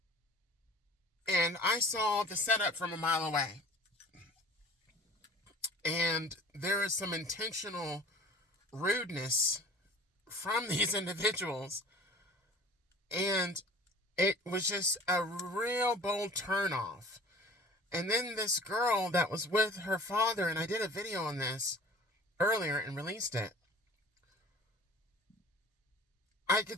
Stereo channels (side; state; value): both; normal; correlation 0.44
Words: and I saw the setup from a mile away. And there is some intentional rudeness from these individuals. And it was just a real bold turnoff. And then this girl that was with her father, and I did a video on this earlier and released it. I